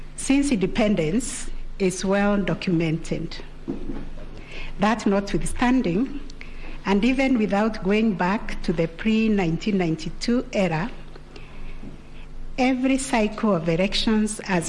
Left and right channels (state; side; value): identical; both; correlation 1.00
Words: since independence is well documented. That notwithstanding, and even without going back to the pre-1992 era, every cycle of elections